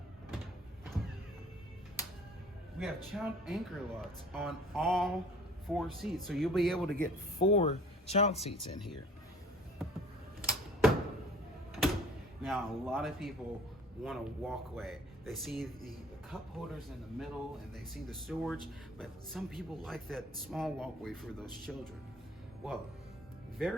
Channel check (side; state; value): both; normal; correlation 0.50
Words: we have child anchor locks on all 4 seats. So you'll be able to get 4 child seats in here. Now, a lot of people want a walkway. They see the cup holders in the middle and they see the storage, but some people like that small walkway for those children. Well,